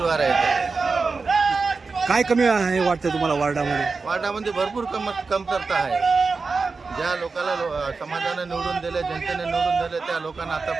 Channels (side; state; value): left; quieter; 4.4 dB